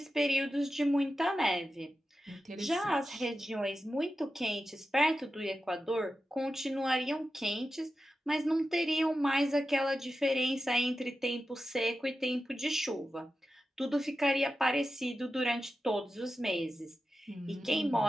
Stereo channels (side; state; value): both; normal; correlation 0.92